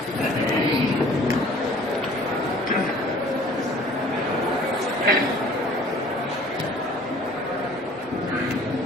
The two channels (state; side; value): normal; both; correlation 0.51